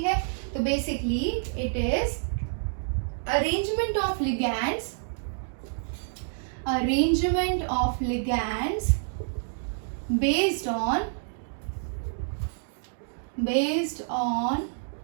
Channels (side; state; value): left; silent; digital silence